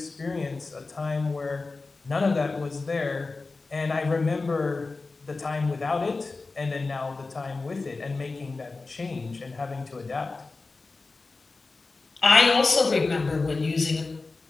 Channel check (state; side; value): quieter; right; 3.7 dB